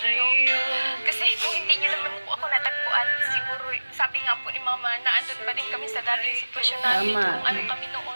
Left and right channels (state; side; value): inverted; both; correlation -1.00